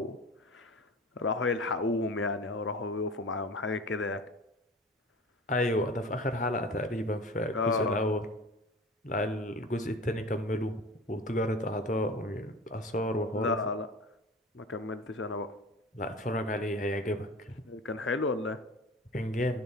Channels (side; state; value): both; normal; correlation 0.37